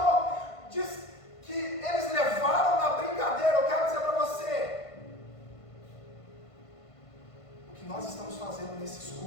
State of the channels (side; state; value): right; late; 1.5 ms